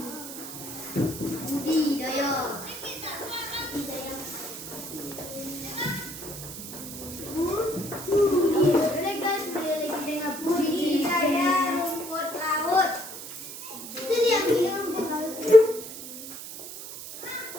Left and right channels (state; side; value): noise; right; hiss, 11 dB below the sound